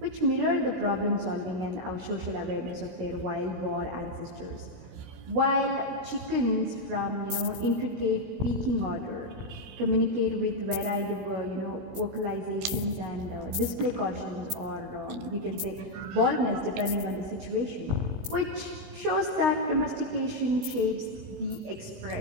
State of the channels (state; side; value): late; left; 16 ms